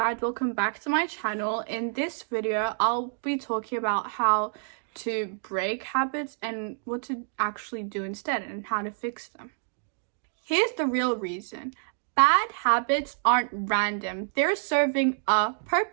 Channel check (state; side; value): silent; left; digital silence